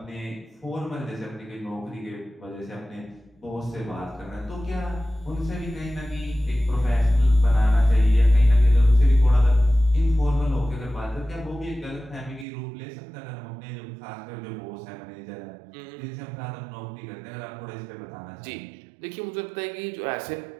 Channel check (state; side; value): drops out; left; at 12.5 s